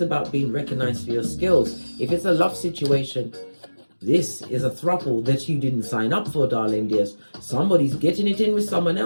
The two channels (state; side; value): inverted; both; correlation -1.00